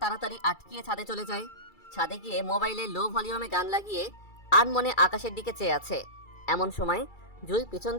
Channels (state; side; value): late; right; 2.3 ms